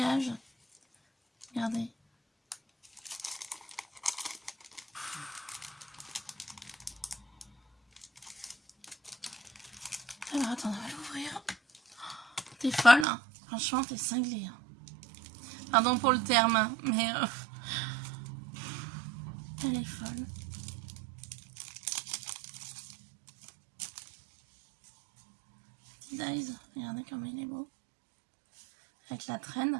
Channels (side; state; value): left; drops out; at 13.1 s